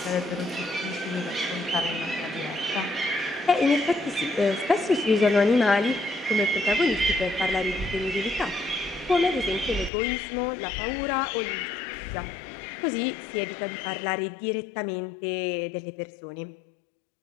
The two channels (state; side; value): drops out; right; at 9.9 s